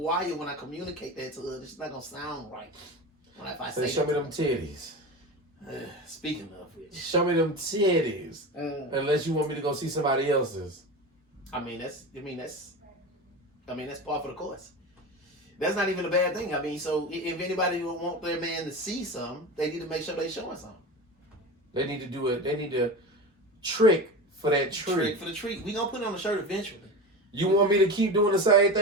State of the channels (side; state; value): both; normal; correlation 0.27